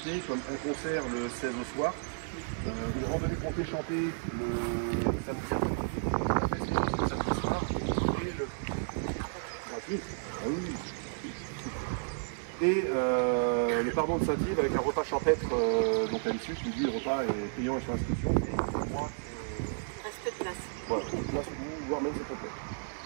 comme un concert le 16 au soir, une randonnée comptée chantée le samedi après, un festival le samedi soir et le gratuit. Ah oui. Et le pardon de Saint-Yves avec un repas champêtre donc à l'issue, je me dis le repas est payant et sur inscription. Et moi, reste de place. Voilà, place ou voire même c'est complet.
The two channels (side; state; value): left; silent; 56 dB below the other